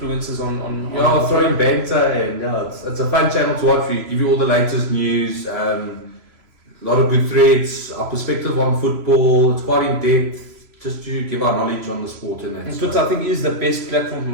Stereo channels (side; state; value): left; late; 3.0 ms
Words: on Yeah, throwing banter and yeah, it's a fun channel to watch. We give you all the latest news. A lot of good threads, our perspective on football. It's quite in depth, just to give our knowledge on the sport and that. And Twitter, I think, is the best platform from